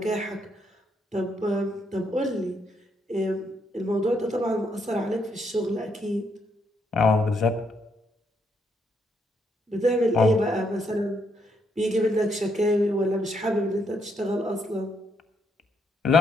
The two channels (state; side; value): normal; both; correlation 0.75